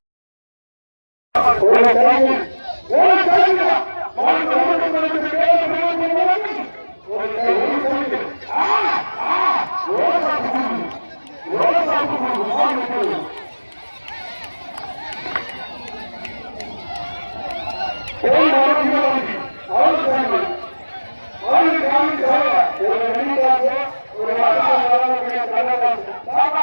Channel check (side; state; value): both; inverted; correlation -1.00